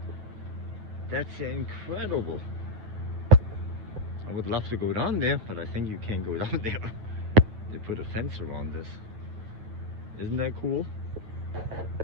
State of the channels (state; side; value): late; left; 9.3 ms